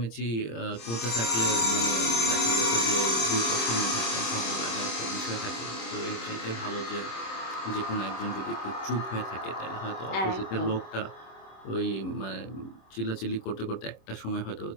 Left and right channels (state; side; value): late; right; 26 ms